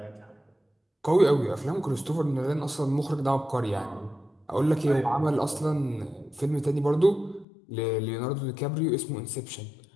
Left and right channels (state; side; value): drops out; right; at 7.5 s